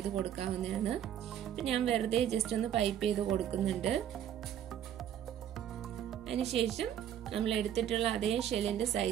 കൊടുക്കാവുന്നതാണ്. അപ്പം ഞാൻ വെറുതെ ജസ്റ്റ് ഒന്ന് പൈപ്പ് ചെയ്ത് കൊടുക്കുന്നുണ്ട്. അതിനുശേഷം നമ്മൾ എടുത്തിട്ടുള്ള അതേ ഷെല്ലിന്റെ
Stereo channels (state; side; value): quieter; left; 10.1 dB